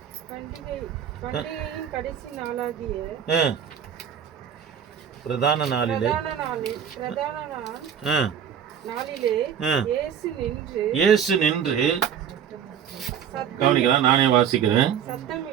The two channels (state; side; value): quieter; left; 8.5 dB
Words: கடைசி நாளாகிய பிரதான நாளிலே இயேசு நின்று, கவனிக்கலாம், நானே வாசிக்கிறேன்.